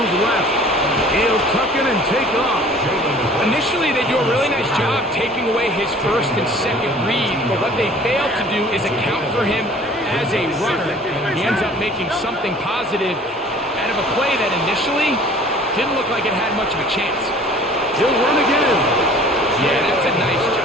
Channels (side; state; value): both; normal; correlation 0.49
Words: left. He'll tuck it and take off. Initially, they do a really nice job taking away his 1st and 2nd read, but what they fail to do is account for him as a runner. He ends up making something positive out of a play that initially didn't look like it had much of a chance. He'll run again. Yeah, that's a nice